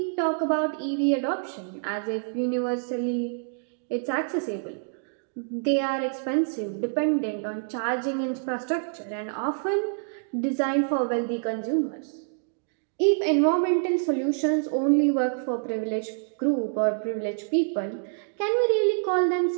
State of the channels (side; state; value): left; silent; digital silence